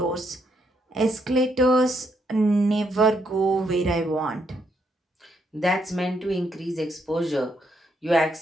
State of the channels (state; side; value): normal; both; correlation 0.76